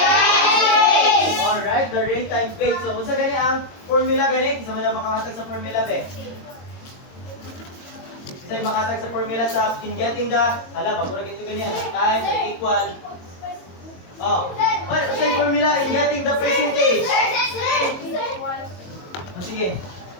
Alright, the rate times base. So, kung sa ganyan ang formula ganit, isa mo lang makakatag sa formula be. Isa yung makatag sa formula sa in getting the, pagkurag ito ganyan, time equal. Oh, what is yung formula in getting the percentage? Oh, sige.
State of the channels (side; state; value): right; late; 22 ms